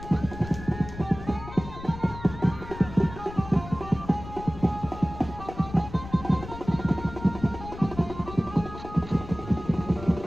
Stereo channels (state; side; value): noise; left; rumble, 13 dB below the sound